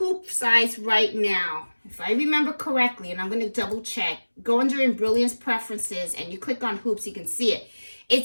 size right now, if I remember correctly, and I'm going to double check, go under Embroidering preferences and you click on hoops, you can see it.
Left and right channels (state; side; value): inverted; both; correlation -1.00